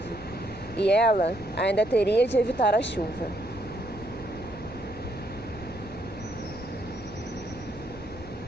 E ela ainda teria de evitar a chuva.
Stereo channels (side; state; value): left; noise; rumble, 15 dB below the sound